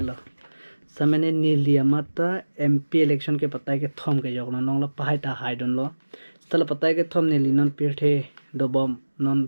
समने नीलिया माता MP election के पता है कि थम के जोगना नंगला पहाई ता हाई डन लो स्थल पता है कि थम नीली नन पीठे दबम नन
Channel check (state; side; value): inverted; both; correlation -1.00